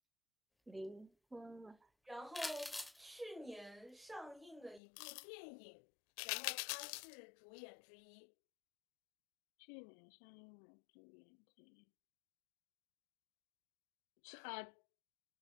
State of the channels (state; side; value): drops out; right; at 4.8 s